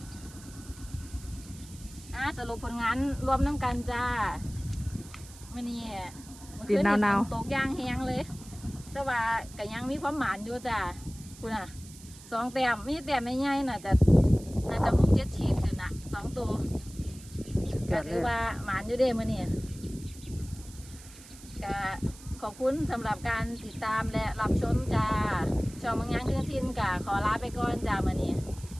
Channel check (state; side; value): noise; right; hiss, 19 dB below the sound